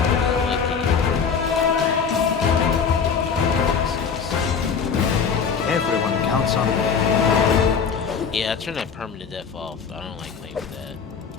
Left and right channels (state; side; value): quieter; right; 6.2 dB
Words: Everyone counts on me. Yeah, I turned that permanent death off. I don't like playing with that.